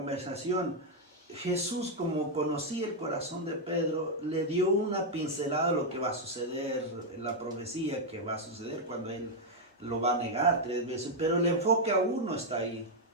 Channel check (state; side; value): normal; both; correlation 0.00